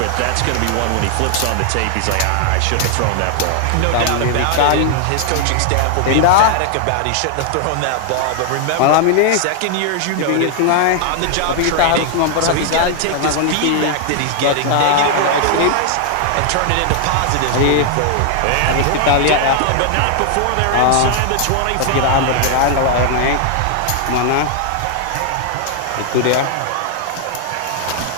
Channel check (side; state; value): both; different; correlation 0.00